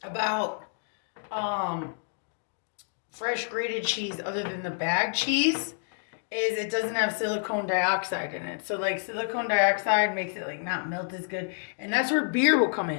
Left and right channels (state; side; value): silent; right; digital silence